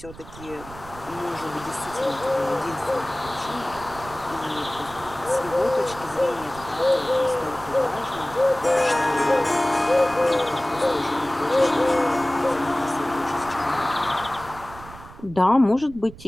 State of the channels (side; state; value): right; noise; rumble, 18 dB below the sound